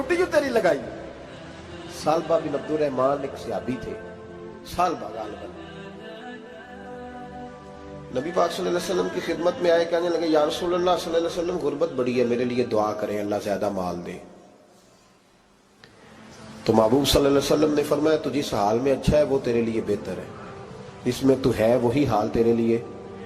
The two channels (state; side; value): identical; both; correlation 1.00